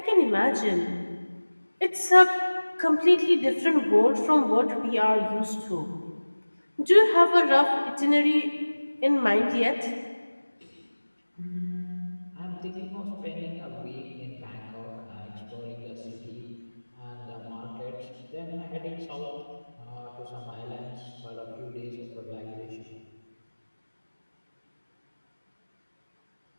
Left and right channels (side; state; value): both; inverted; correlation -1.00